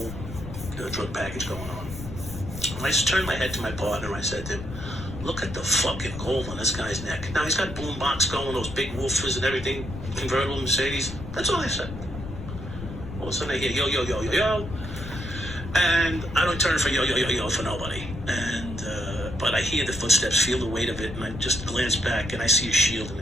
drug package going on. And I just turned my head to my partner. I said to him, "Look at the fucking gold on this guy's neck." Now he's got boombox going, those big woofers and everything, convertible Mercedes. That's all I said. All of a sudden I hear yo, yo, yo, yo, yo. And I don't turn for yo, yo, yo, yo for nobody. And, but I hear the footsteps, feel the weight of it, and I just glance back and I see a shield in the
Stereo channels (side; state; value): left; noise; rumble, 10 dB below the sound